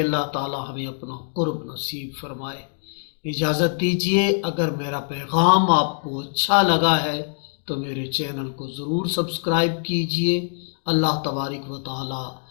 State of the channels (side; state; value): right; silent; digital silence